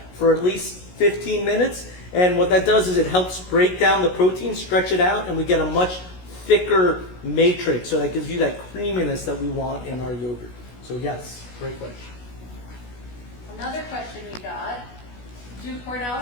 for at least 15 minutes. And what that does is it helps break down the protein, stretch it out, and we get a much thicker matrix. So that gives you that creaminess that we want in our yogurt. So yes, great question. Another question we got, do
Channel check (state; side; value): late; right; 16 ms